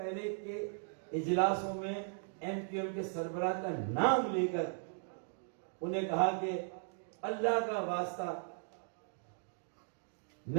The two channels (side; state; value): left; silent; digital silence